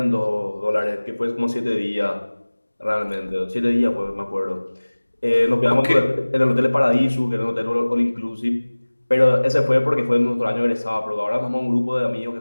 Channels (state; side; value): inverted; both; correlation -1.00